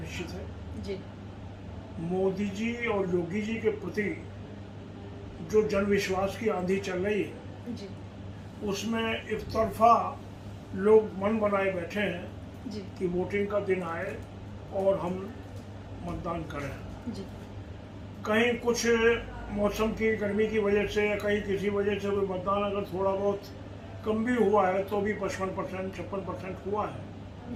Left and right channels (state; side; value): identical; both; correlation 1.00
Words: है। जी। मोदी जी और योगी जी के प्रति जो जनविश्वास की आंधी चल रही है जी, उसमें एक तरफा लोग मन बनाए बैठे हैं जी, कि वोटिंग का दिन आए और हम मतदान करें। जी, कहीं कुछ मौसम की गर्मी की वजह से या कहीं किसी वजह से कोई मतदान अगर थोड़ा बहुत कम भी हुआ है तो भी 55%, 56% हुआ है।